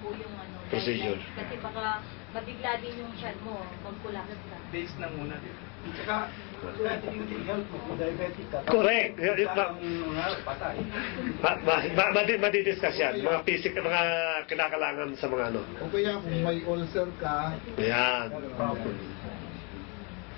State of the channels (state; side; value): quieter; right; 33.5 dB